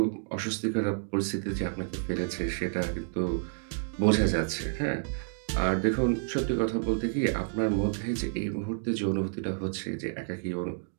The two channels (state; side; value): silent; left; digital silence